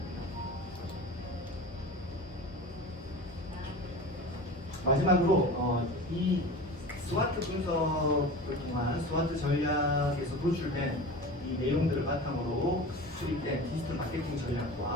마지막으로 이 스와트 분석을 통한 스와트 전략에서 도출된 이 내용들을 바탕으로 수립된 디지털 마케팅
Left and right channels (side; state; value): both; normal; correlation 0.33